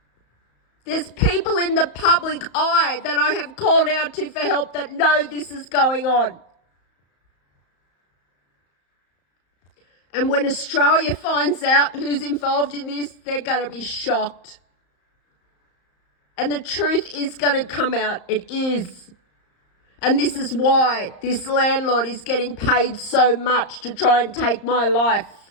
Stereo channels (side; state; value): right; late; 34 ms